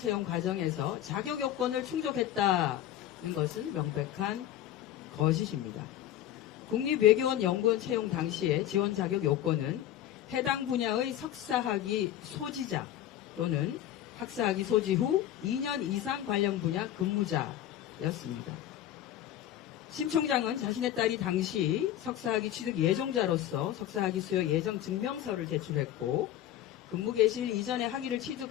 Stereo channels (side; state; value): right; quieter; 11.9 dB